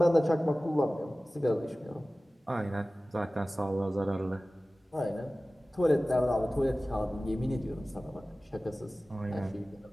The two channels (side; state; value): both; normal; correlation 0.97